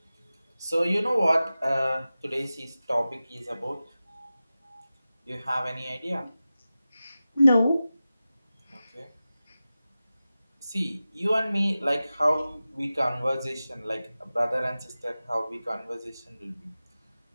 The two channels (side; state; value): both; inverted; correlation -0.95